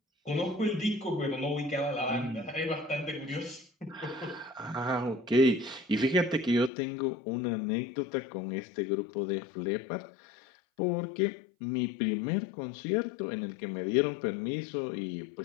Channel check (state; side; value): drops out; right; at 6.7 s